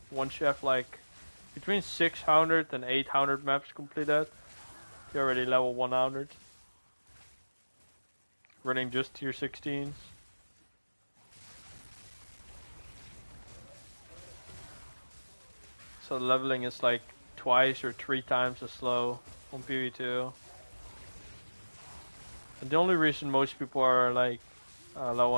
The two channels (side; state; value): both; inverted; correlation -1.00